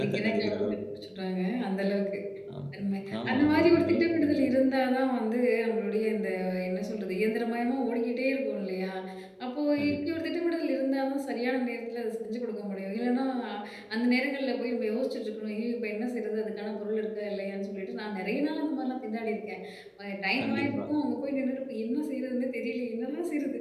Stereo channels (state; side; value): identical; both; correlation 1.00